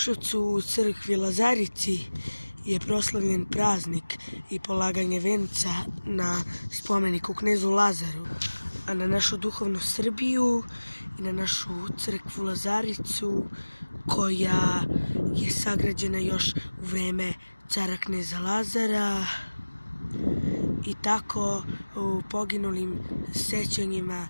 u crkvi Lazarici je proslavljen praznik i polaganje venca na spomeniku knezu Lazaru, a na našu duhovnu Srbiju i na našu crkvu Lazaricu koja je sagrađena još u vreme cara kneza Lazara, i tako u poginulim sećanjima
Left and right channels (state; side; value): inverted; both; correlation -1.00